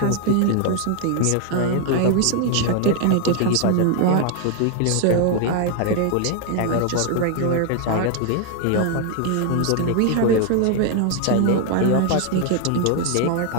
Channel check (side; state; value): both; different; correlation 0.00